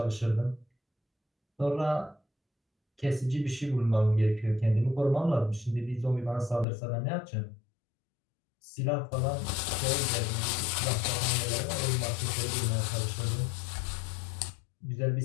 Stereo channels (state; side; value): drops out; right; at 6.7 s